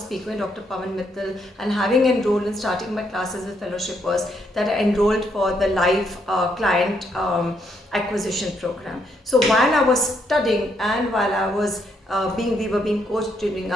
with Dr. Pavan Mittal and having enrolled and starting my classes with fellowship, was that I enrolled for the live client acquisition program. So while I was studying and while I was we were being coached during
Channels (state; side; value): normal; both; correlation 0.75